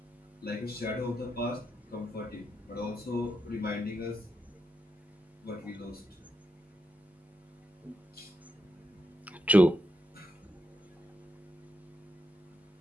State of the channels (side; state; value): both; normal; correlation 0.83